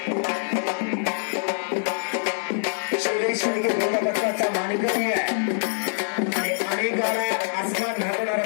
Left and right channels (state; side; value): silent; right; 62 dB below the other